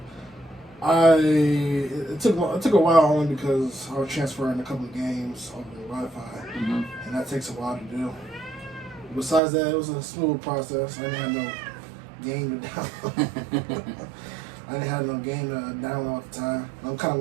It took a while only because I was transferring a couple of games over the Wi-Fi, Mm-hmm. and that takes a while to do. Besides that, it was a smooth process. I didn't have no game to download. I didn't have no game to download at the time. I kind of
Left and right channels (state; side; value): drops out; left; at 9.4 s